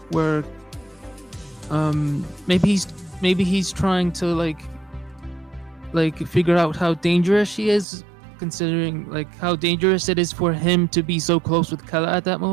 maybe he's trying to like figure out how dangerous she is, considering like how dangerous it is for him to be so close with Kella at that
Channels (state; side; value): drops out; left; at 7.9 s